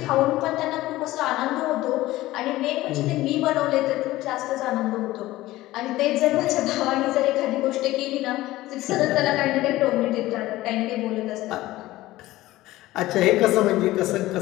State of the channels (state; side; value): quieter; right; 17.0 dB